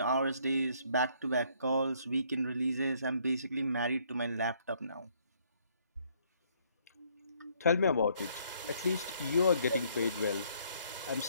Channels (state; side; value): inverted; both; correlation -0.66